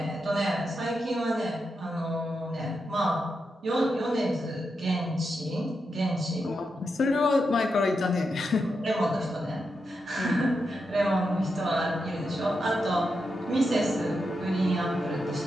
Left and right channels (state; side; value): normal; both; correlation 0.86